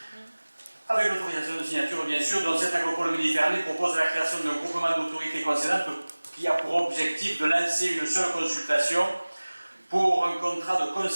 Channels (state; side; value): inverted; both; correlation -1.00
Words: avec l'autorisation de signature, bien sûr, dont cette agropole Méditerranée propose la création d'un groupement d'autorités concédantes qui a pour objectif de lancer une seule consultation pour un contrat de